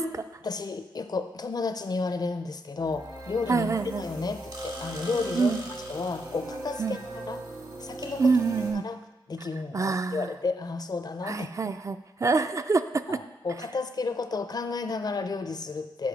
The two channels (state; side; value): normal; both; correlation 0.76